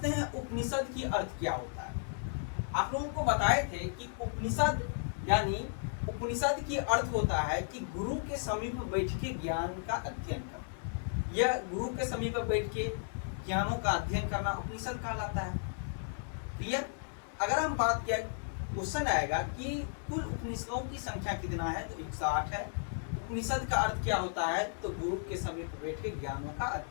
हैं उपनिषद की अर्थ क्या होता है। आप लोगों को बताए थे कि उपनिषद यानी उपनिषद की अर्थ होता है कि गुरु के समीप बैठ के ज्ञान का अध्ययन करना। यह गुरु के समीप बैठ के ज्ञानों का अध्ययन करना उपनिषद कहलाता है। क्लियर? अगर हम बात किया, क्वेश्चन आएगा कि कुल उपनिषदों की संख्या कितना है, तो 108 है। उपनिषद का अर्थ क्या होता है, तो गुरु के समीप बैठ के ज्ञानों का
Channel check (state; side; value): silent; right; digital silence